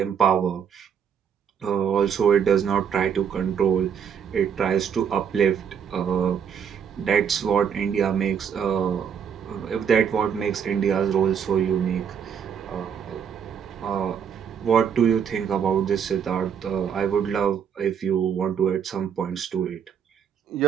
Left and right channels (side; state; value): left; quieter; 7.6 dB